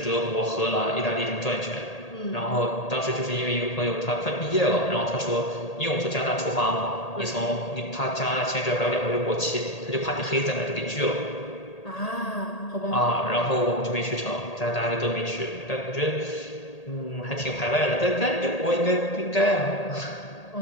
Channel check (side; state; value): right; late; 1.8 ms